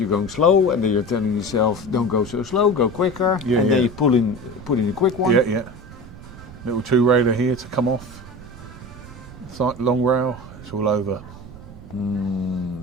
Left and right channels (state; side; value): noise; right; rumble, 16 dB below the sound